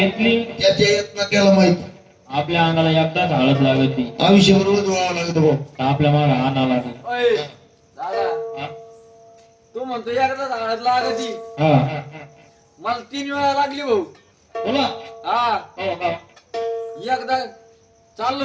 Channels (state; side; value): identical; both; correlation 1.00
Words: त्याच्या यत्न त्याला माहित आपल्या अंगाला एकदाच हळद लागत ती आयुष्य बरोबर जोडावं लागत भाऊ. तर आपल्या मागे आणा लागत. दादा हा? तू म्हणतो एकदा झाडात लागती हा मला 3 वेळा लागली भाऊ. बोला हा हो का? एकदा